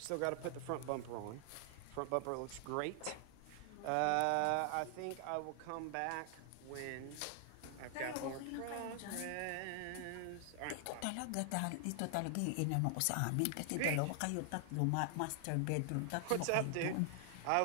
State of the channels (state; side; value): different; both; correlation 0.00